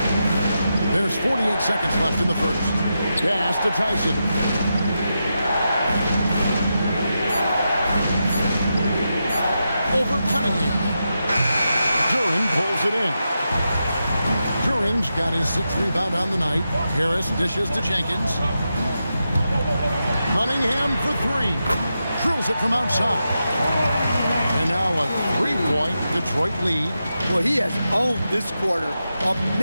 There's 48 seconds left in the first. Pass to Tyson. Over Cunningham. Duran pulls it in. Duran's got his 6th rebound on the night. Harris dishes to Jenkins. Cunningham for 3. Drills it from outside. And now a 3-point Detroit lead. Well, he has owned this quarter. A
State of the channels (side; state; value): both; inverted; correlation -0.88